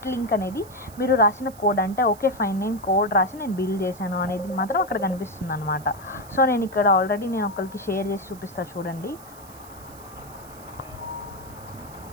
లింక్ అనేది మీరు రాసిన కోడ్ అంటే ఓకే ఫైన్ నేను కోడ్ రాసి నేను బిల్డ్ చేశాను అనేది మాత్రం అక్కడ కనిపిస్తుంది అనమాట. సో నేను ఇక్కడ ఆల్రెడీ నేను ఒకరికి షేర్ చేసి చూపిస్తా చూడండి.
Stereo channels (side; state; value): right; noise; hiss, 21 dB below the sound